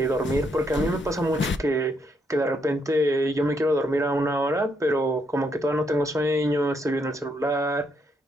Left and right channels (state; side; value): normal; both; correlation 0.76